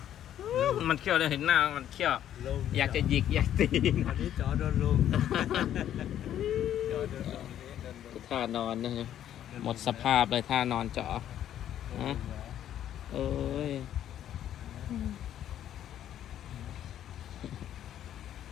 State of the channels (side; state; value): right; quieter; 11.0 dB